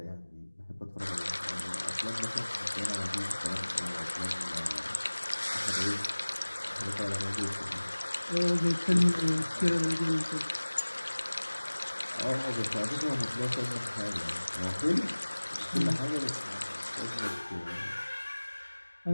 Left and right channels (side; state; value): both; inverted; correlation -1.00